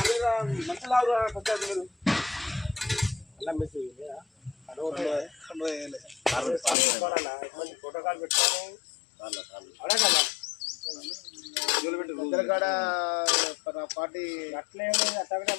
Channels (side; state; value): right; drops out; at 6.8 s